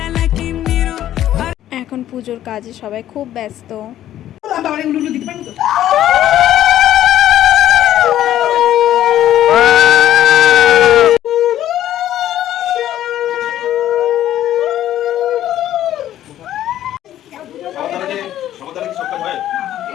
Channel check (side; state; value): right; quieter; 12.3 dB